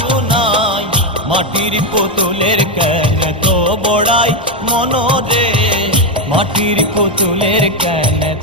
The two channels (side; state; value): both; normal; correlation 0.07